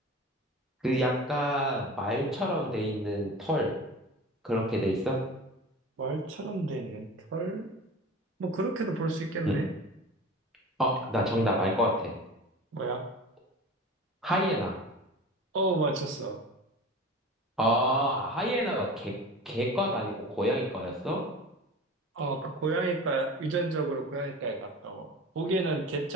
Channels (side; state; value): both; normal; correlation 0.35